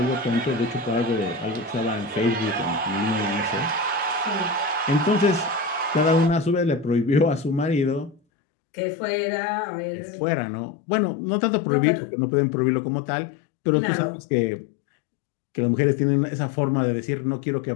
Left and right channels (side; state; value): right; drops out; at 8.2 s